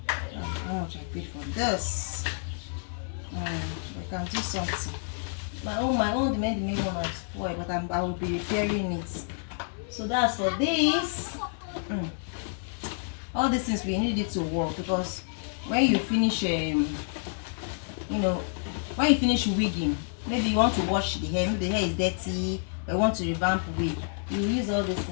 How much I paid for this? I can do something. My own the main one is spoiled, but I will be repairing it. So that's for this. All these things we need it to work, because when you finish when you finish wigging, maybe you want to wash the hair, maybe the hair is dirty, or you want to revamp wig, you use all these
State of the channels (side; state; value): right; silent; digital silence